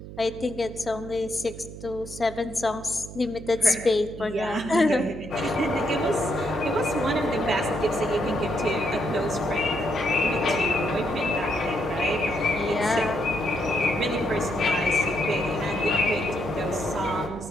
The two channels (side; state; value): right; noise; hum, 13 dB below the sound